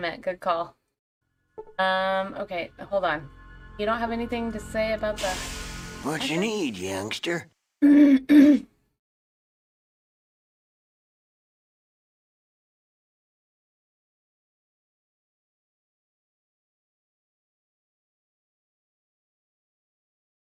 Good call. Okay, hold on. You don't have anything to say about the... What you need, youngster?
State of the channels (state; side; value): identical; both; correlation 1.00